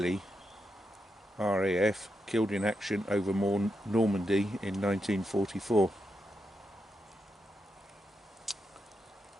RAF, killed in action over Normandy in 1944.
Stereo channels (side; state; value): both; normal; correlation 0.85